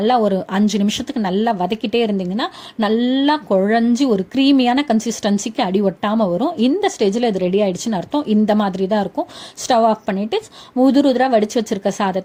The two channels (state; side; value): identical; both; correlation 1.00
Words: ஒரு 5 நிமிஷத்துக்கு நல்லா வதக்கிட்டே இருந்தீங்கன்னா நல்லா குழஞ்சி ஒரு க்ரீமியான கன்சிஸ்டன்சிக்கு அடி ஒட்டாமல் வரும். இந்த ஸ்டேஜில் இது ரெடி ஆயிடுச்சுன்னு அர்த்தம். இந்த மாதிரி தான் இருக்கும். ஸ்டவ் ஆஃப் பண்ணிவிட்டு உதிராக வடித்து வச்சிருக்க